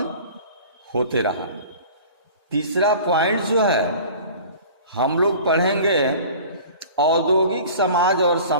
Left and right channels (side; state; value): both; inverted; correlation -0.43